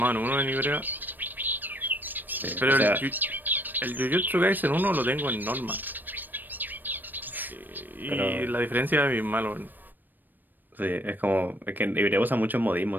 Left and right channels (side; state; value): left; late; 0.090 ms